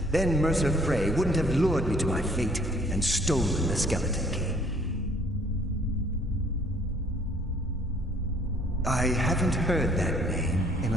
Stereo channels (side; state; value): both; normal; correlation 0.59